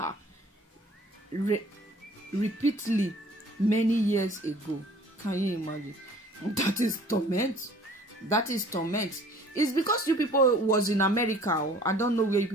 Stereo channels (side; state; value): both; normal; correlation 0.51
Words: repeatedly many years ago. Can you imagine? That is torment. That is torment. It's because you people was in America, or I don't know where you